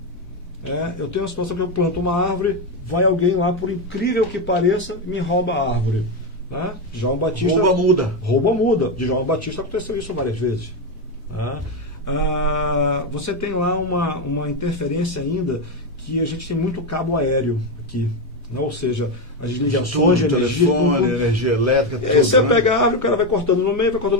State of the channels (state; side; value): normal; both; correlation 0.09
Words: Eu tenho uma situação que eu planto uma árvore, vai alguém lá, por incrível que pareça, me rouba a árvore. Né? João Batista... Rouba muda. De João Batista aconteceu isso várias vezes. Você tem lá uma interferência ainda que a gente tem muito cabo aéreo aqui. Ou seja, as ligações de energia, telefone, energia elétrica, tudo. E aí você pega a árvore, o cara vai cortando no meio,